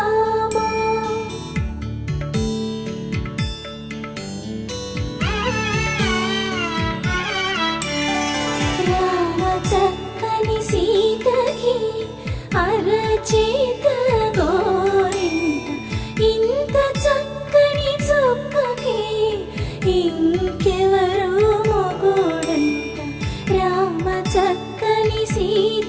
రామ చక్కని సీతకి అరచేత గోరింట ఇంత చక్కని చుక్కకి ఇంకెవరు మొగుడంట రామ చక్కని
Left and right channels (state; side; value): identical; both; correlation 1.00